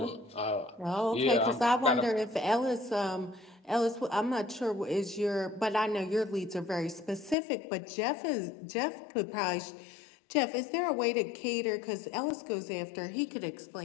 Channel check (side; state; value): right; drops out; at 7.4 s